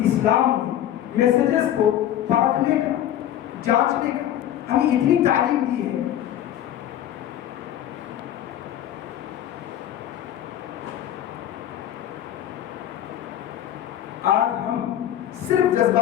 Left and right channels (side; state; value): right; quieter; 11.5 dB